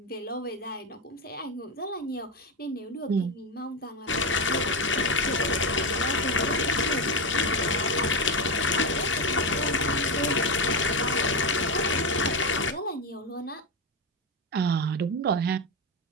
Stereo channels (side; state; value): both; normal; correlation 0.11